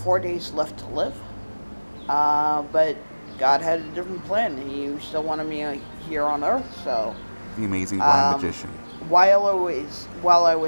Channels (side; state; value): both; inverted; correlation -1.00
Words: days left to live. But God had a different plan. He still wanted me here on Earth, so... The amazing blind magician. While I